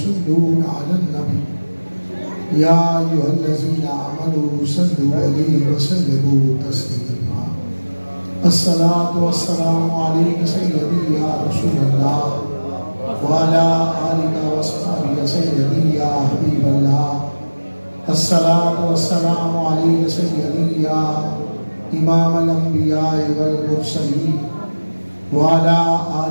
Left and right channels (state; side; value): inverted; both; correlation -1.00